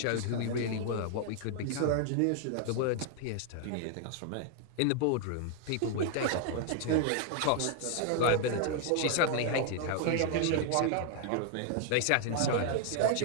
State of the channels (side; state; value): both; different; correlation 0.00